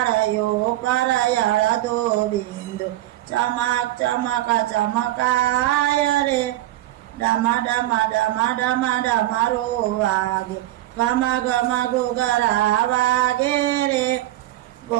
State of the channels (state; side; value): quieter; left; 15.4 dB